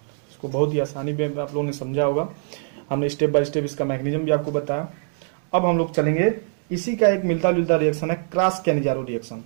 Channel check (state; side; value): silent; left; digital silence